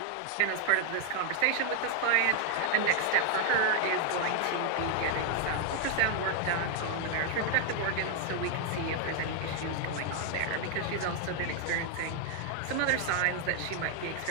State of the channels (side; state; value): both; different; correlation 0.00